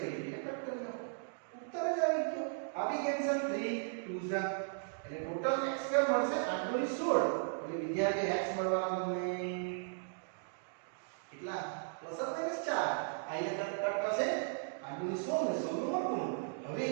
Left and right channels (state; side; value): silent; left; digital silence